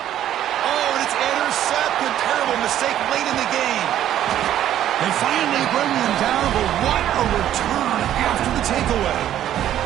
Oh, and it's intercepted. Terrible mistake late in the game. They finally bring him down, but what a return after the takeaway.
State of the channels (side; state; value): left; quieter; 11.6 dB